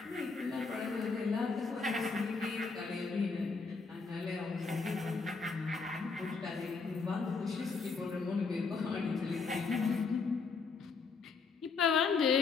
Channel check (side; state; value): right; quieter; 4.6 dB